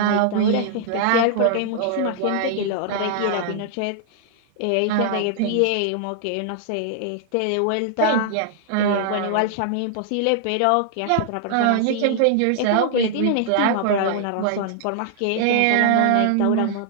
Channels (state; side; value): different; both; correlation -0.01